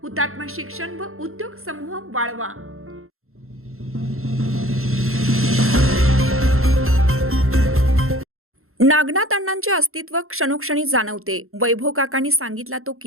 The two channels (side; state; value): left; late; 0.62 ms